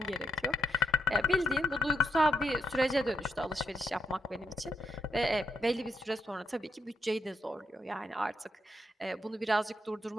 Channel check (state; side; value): normal; both; correlation 0.80